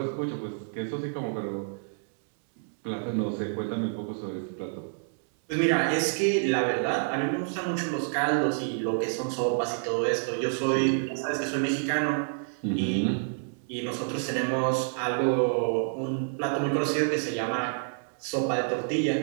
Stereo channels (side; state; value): left; silent; digital silence